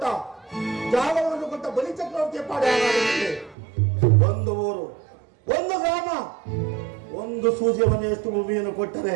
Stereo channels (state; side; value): drops out; left; at 3.6 s